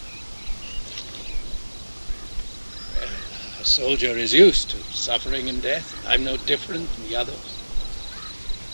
Well, a soldier is used to suffering and death. I'm no different from the others.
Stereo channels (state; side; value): inverted; both; correlation -1.00